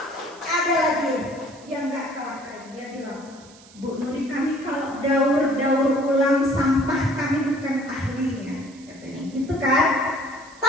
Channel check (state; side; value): noise; right; hiss, 23 dB below the sound